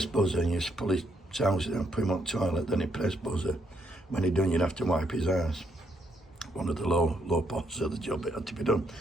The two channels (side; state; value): both; normal; correlation 0.75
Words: buzzer, and he used to pull his trousers down, put him on the toilet, then he'd press buzzer. When he'd done, you'd have to wipe his ass. One of the low parts of the job, it had to be done.